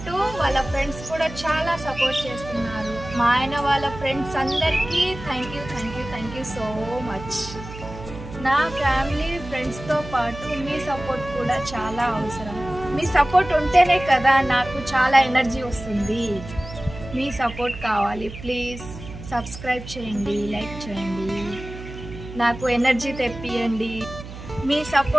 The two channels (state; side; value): noise; right; hum, 12 dB below the sound